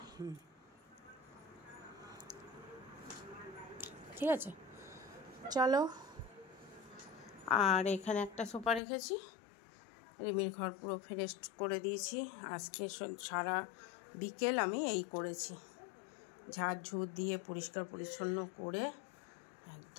ঠিক আছে চলো। আর এখানে একটা সোফা রেখেছি। রিমির ঘর পুরো ফ্রেশ করে দিয়েছি। আজকে সারা বিকেল আমি এই করেছি, ঝাড় ঝুড় দিয়ে পরিষ্কার পরিচ্ছন্ন করে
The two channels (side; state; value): right; drops out; at 8.8 s